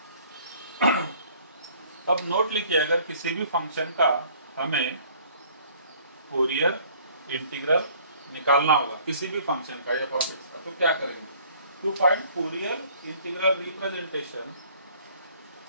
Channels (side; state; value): both; inverted; correlation -0.56